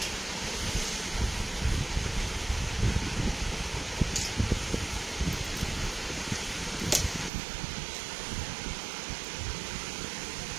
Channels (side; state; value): left; drops out; at 7.3 s